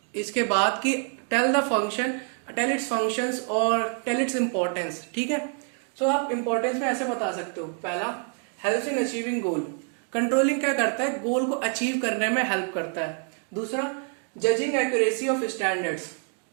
इसके बाद कि tell the function, tell its functions और टेल इट्स इंपॉर्टेंस। ठीक है। सो आप इंपॉर्टेंस में ऐसे बता सकते हो। पहला, helps in achieving goal. Controlling क्या करता है, गोल को अचीव करने में हेल्प करता है। दूसरा, जजिंग एक्यूरेसी ऑफ स्टैंडर्ड्स।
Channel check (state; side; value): quieter; left; 38.6 dB